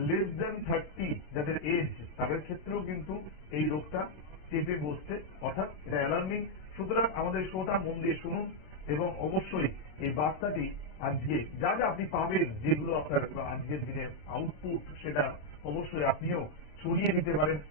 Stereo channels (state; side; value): late; right; 27 ms